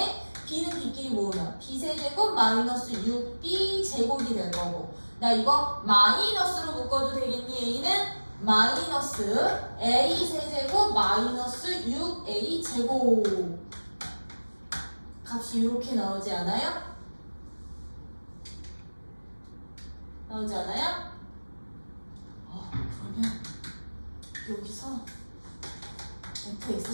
B는 B끼리 모으면 B 세제곱 마이너스 6B 제곱이 될 거고, 나 이거 마이너스로 묶어도 되겠니? A는 마이너스 A 세제곱 마이너스 6A 제곱 값이 이렇게 나오지 않아요? 그러면 여기서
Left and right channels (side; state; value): both; inverted; correlation -1.00